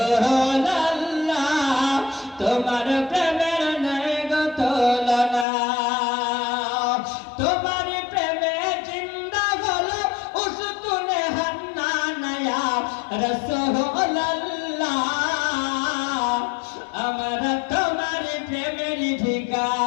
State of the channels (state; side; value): drops out; right; at 5.5 s